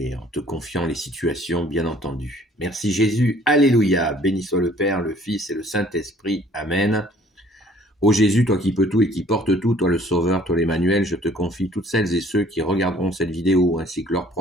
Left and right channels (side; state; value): both; normal; correlation 0.56